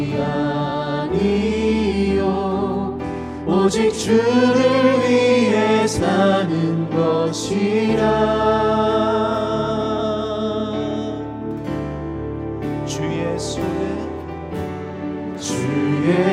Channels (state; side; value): identical; both; correlation 1.00